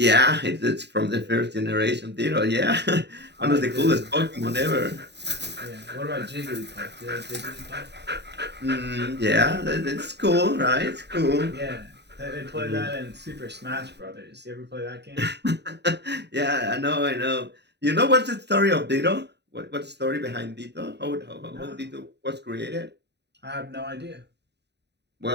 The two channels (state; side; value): late; left; 0.50 ms